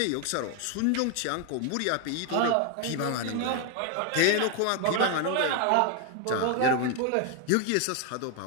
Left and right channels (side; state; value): both; different; correlation 0.01